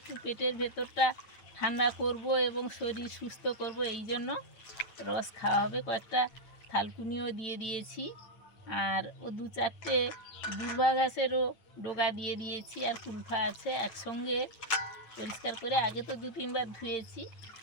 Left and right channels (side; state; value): right; late; 9.1 ms